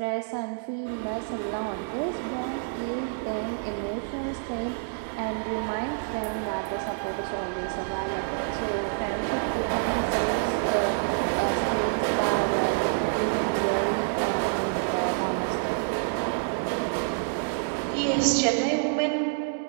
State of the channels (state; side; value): silent; left; digital silence